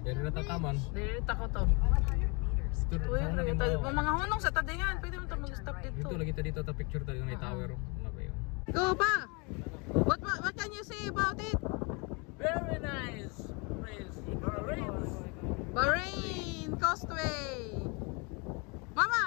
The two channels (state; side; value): quieter; right; 31.0 dB